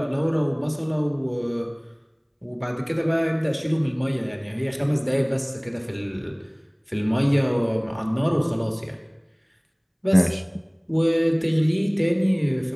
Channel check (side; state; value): both; identical; correlation 1.00